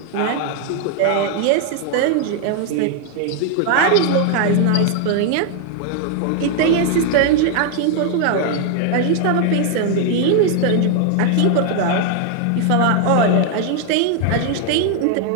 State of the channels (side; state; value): both; different; correlation 0.00